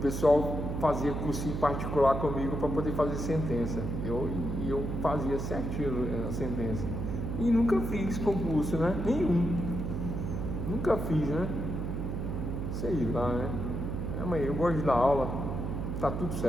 fazia cursinho particular comigo para poder fazer sentença. Eu fazia certinho a sentença. E nunca fiz concurso, né? Nenhum. Nunca fiz, né? Sei lá, né? Amanhã eu gosto de dar aula. Tá tudo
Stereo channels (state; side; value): noise; right; hum, 3 dB below the sound